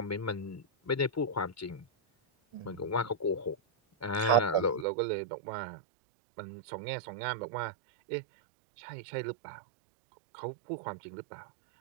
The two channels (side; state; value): left; drops out; at 4.9 s